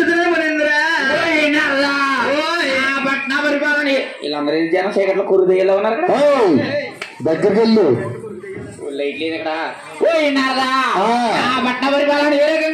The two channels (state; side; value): identical; both; correlation 1.00